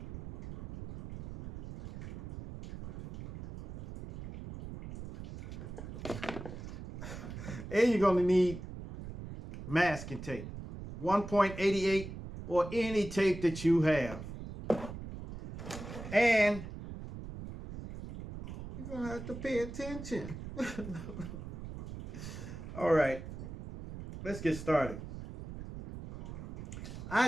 And you're going to need masking tape, 1.88 or any tape that you have. And you're going to have to pay attention. All right, let's get started.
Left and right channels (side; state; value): right; noise; rumble, 10 dB below the sound